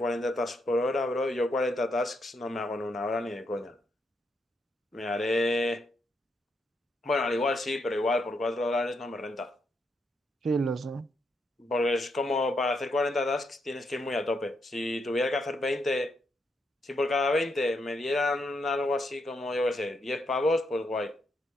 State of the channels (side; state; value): both; normal; correlation 0.79